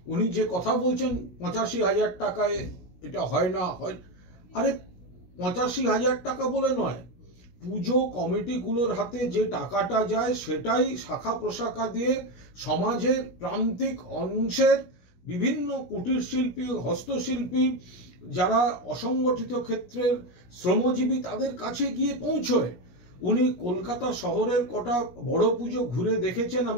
উনি যে কথা বলছেন ৮৫,০০০ টাকায় এটা হয় না হয়, আরে ৮৫,০০০ টাকা বলে নয়, পুজো কমিটিগুলোর হাতে যে টাকাটা যায় সেটাই শাখা প্রশাখা দিয়ে সমাজের প্রান্তিক অংশের বিভিন্ন কুটির শিল্পী, হস্তশিল্পী, যারা অসংগঠিত ক্ষেত্রের শ্রমজীবী তাদের কাছে গিয়ে পৌঁছয়। উনি কলকাতা শহরের কটা বড় পুজো ঘুরে দেখেছেন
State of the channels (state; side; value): late; right; 17 ms